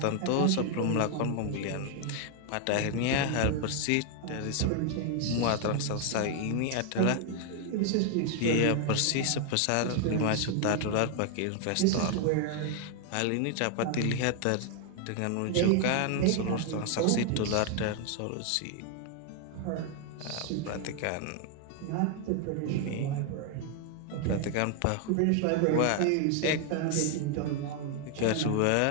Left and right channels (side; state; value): both; different; correlation 0.00